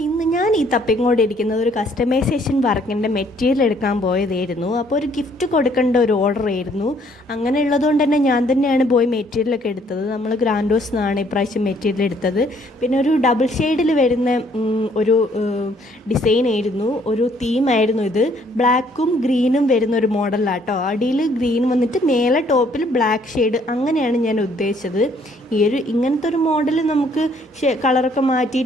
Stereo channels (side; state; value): both; normal; correlation 0.64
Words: ഞാൻ ഈ തപ്പിക്കൊണ്ടിരിക്കുന്നത് ഒരു കസ്റ്റമൈസേഷൻ വർക്കിൻ്റെ മെറ്റീരിയൽ എടുക്കാൻ പോയതായിരുന്നു. അപ്പോൾ ഒരു ഗിഫ്റ്റ് കൊടുക്കേണ്ട ഒരു ഓർഡർ ആയിരുന്നു. അങ്ങനെ ഉള്ളതുകൊണ്ട് തന്നെ ഞാൻ തന്നെയാണ് പോയി മെറ്റീരിയലൊക്കെ എടുത്തത്. നമ്മൾ ഗ്രാൻഡോസ് എന്നാണ് ഇപ്രാവശ്യം മെറ്റീരിയൽ എടുത്തത്. പിന്നെ ഒരു ഡബിൾ ഷെയ്ഡിൽ വരുന്ന ഒരു ഡിസൈൻ ആയിരുന്നു, ഒരു തീമായിരുന്നു ഇത്. ബ്ലാക്കും ഗ്രീനും വരുന്ന ഒരു മോഡലാട്ടോ. അടിയിൽ ഗ്രീൻ വന്നിട്ട് മേലെ ടോപ്പിൽ ബ്ലാക്ക് ഷെയ്ഡ്, അങ്ങനെയാണ് ഞാൻ ഉദ്ദേശിച്ചത്. ഇങ്ങനത്തെ ഒരു മോഡൽ നമുക്ക് കളറൊക്കെ